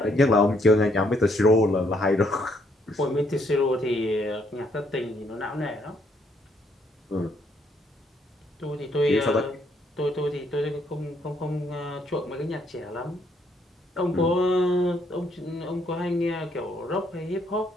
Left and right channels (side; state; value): both; normal; correlation 0.71